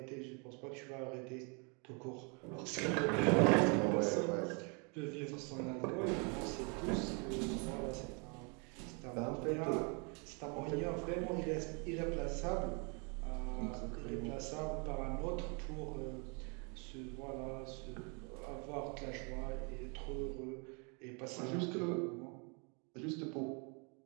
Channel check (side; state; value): left; quieter; 34.3 dB